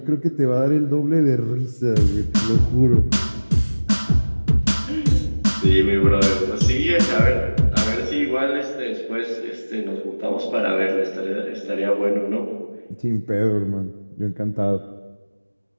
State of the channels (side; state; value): both; inverted; correlation -1.00